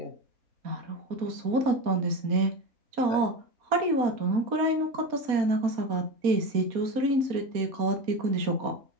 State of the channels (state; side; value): late; left; 4.2 ms